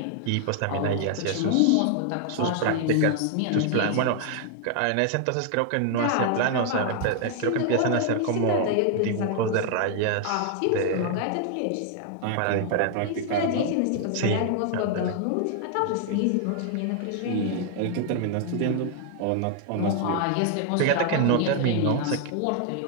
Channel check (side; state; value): both; different; correlation 0.00